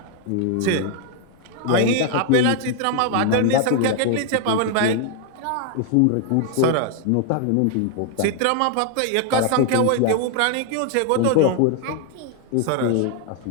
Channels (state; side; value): different; both; correlation 0.00